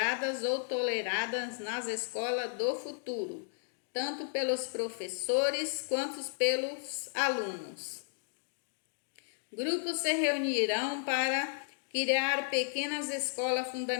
ou toleradas nas escolas do futuro, tanto pelos professores quanto pelos alunos. Grupos se reunirão para criar pequenas escolas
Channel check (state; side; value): silent; right; digital silence